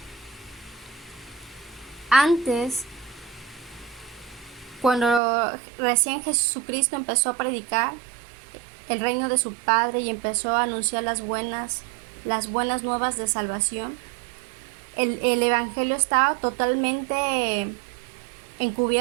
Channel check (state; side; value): drops out; left; at 5.2 s